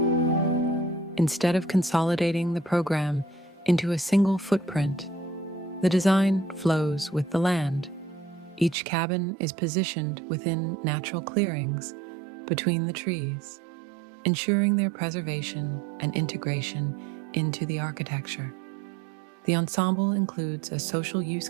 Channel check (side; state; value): left; drops out; at 8.8 s